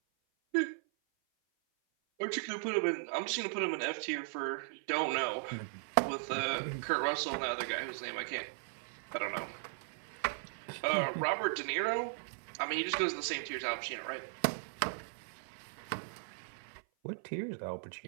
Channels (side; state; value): left; silent; 53 dB below the other